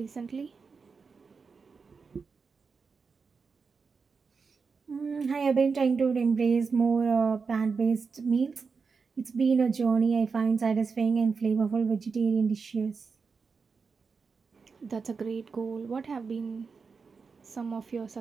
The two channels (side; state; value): left; quieter; 5.1 dB